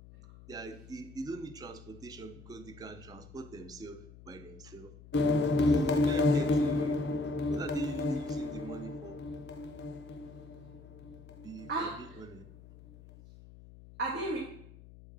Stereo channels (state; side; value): noise; left; hum, 19 dB below the sound